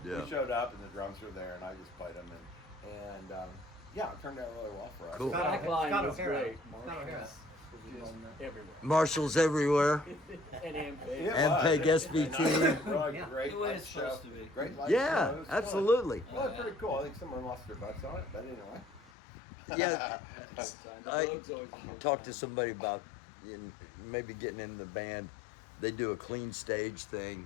Yeah. We showed up and the drums were there and I just played them and yeah, it turned out really well for us. Cool. Scott Backline Scott was O'Hara. great. Scott O'Hara. Just everywhere. Marshall's everywhere. And Ampeg. It And was. Peg It was SBT. really Yeah. great The way light it's show. supposed to be. Great light Yeah, show. It was fun. absolutely. Well, it's pretty cool. I think someone lost their butts on it, but anyway. Yeah. The I Vogue's always a good Talked to time. somebody about maybe getting in the band, they do a clean stage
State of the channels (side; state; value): right; drops out; at 19.1 s